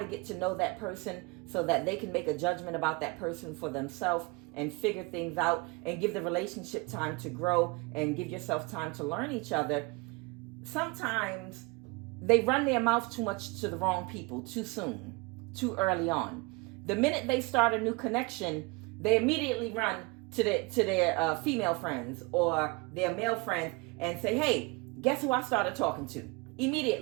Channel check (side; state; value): left; quieter; 26.7 dB